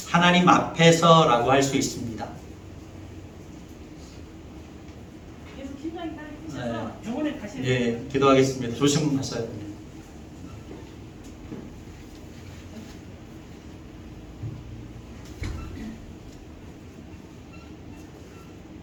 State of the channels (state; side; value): identical; both; correlation 1.00